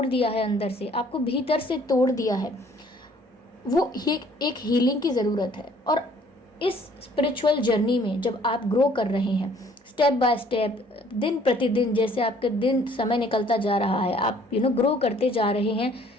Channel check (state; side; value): normal; both; correlation 0.58